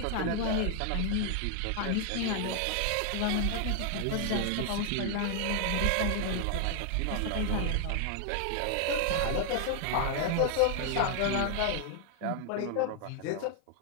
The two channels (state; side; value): different; both; correlation 0.00